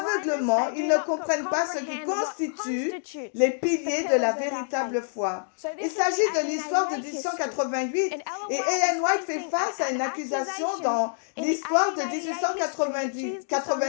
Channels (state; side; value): silent; right; digital silence